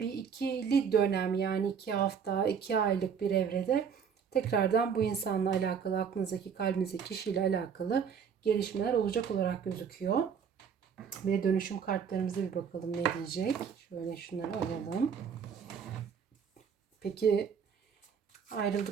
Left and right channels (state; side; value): quieter; left; 6.9 dB